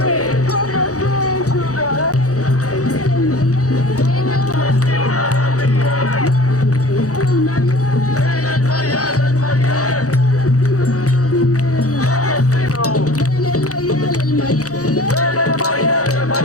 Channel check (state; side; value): late; right; 0.66 ms